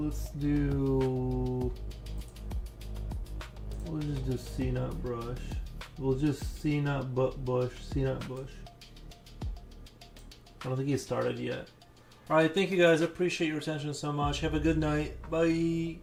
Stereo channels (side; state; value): both; identical; correlation 1.00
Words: do. We'll just do C-Nut Brush. We'll just C-Nut Bush. C-Nut Bush. I don't think he started yet. Alright, thank you guys. I appreciate your attention so much. Have a good night. Bye.